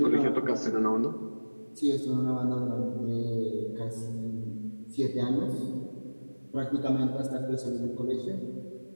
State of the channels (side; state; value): both; inverted; correlation -1.00